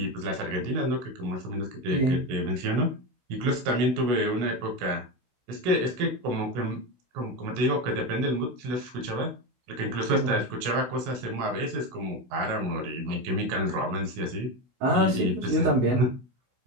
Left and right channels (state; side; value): late; left; 16 ms